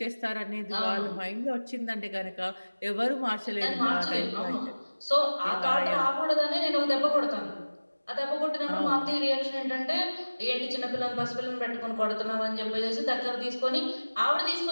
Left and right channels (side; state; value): both; inverted; correlation -1.00